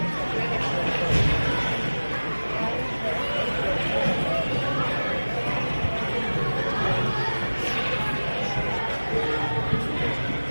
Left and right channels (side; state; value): both; inverted; correlation -1.00